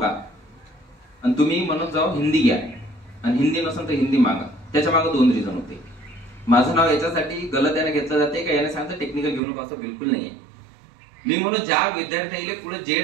आणि तुम्ही म्हणत जाओ हिंदी घ्या, आणि हिंदी नसेल तर हिंदी मागा. त्याच्या मागे 2 रिझन होते. माझं नाव याच्यासाठी गलत याने घेतलं जाते का याने सांगतं टेक्निकल घेऊ नका, असं बिलकुल नाहीये. मी म्हणून ज्या विद्यार्थ्याला पुढे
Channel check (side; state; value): left; drops out; at 9.4 s